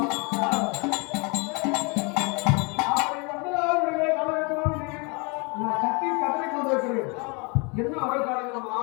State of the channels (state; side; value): quieter; right; 31.4 dB